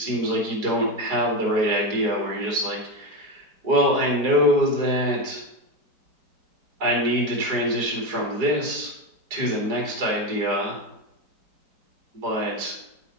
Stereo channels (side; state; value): left; late; 4.8 ms